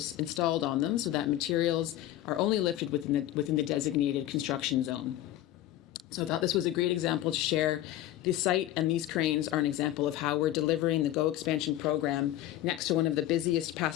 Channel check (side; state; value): right; quieter; 13.8 dB